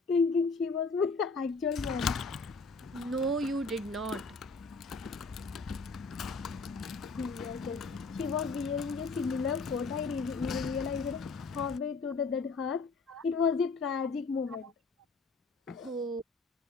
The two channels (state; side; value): quieter; right; 4.1 dB